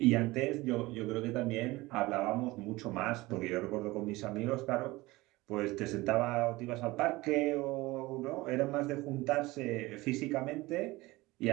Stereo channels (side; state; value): left; quieter; 20.5 dB